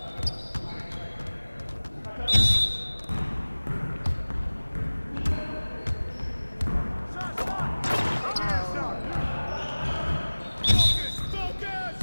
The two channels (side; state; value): both; inverted; correlation -1.00